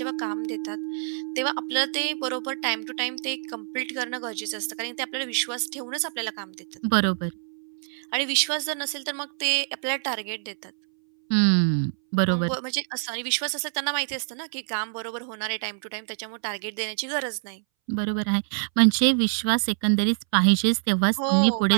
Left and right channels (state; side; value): silent; left; 61 dB below the other